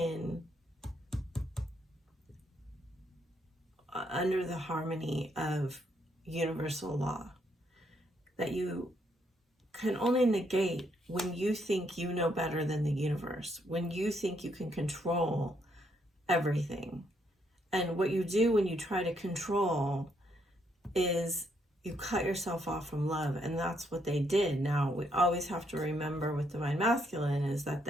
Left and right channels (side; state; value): both; normal; correlation 0.74